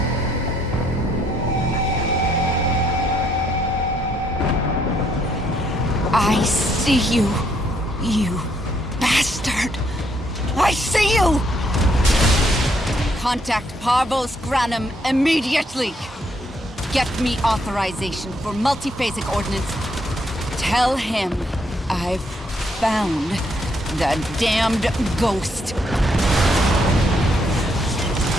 I see you, you bastard. I see you! Contact Parvos Granum immediately. Get me authorization for multiphasic ordnance. Tell him I've found the damned ghost.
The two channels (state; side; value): normal; both; correlation 0.72